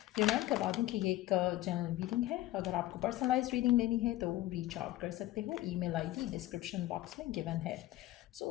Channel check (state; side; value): quieter; right; 15.6 dB